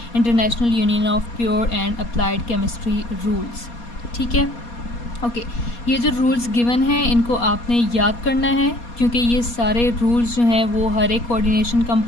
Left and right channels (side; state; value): right; late; 4.2 ms